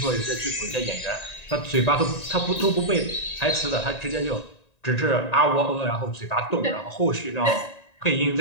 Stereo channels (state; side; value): late; right; 1.9 ms